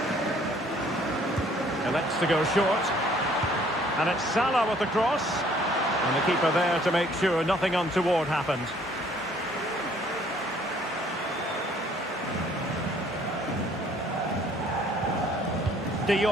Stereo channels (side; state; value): both; normal; correlation 0.60